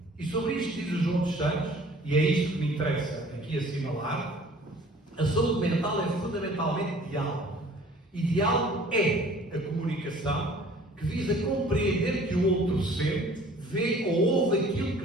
E sobre isto diz o João dos Santos, e é isto que me interessa aqui assinalar, a saúde mental é fundamentalmente diálogo. E diálogo é a comunicação que visa compreender que o outro sente, vê ou ouve aquilo que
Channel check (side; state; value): both; normal; correlation 0.51